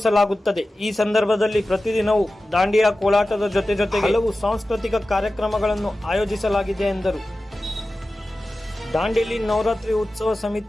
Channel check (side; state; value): both; normal; correlation 0.95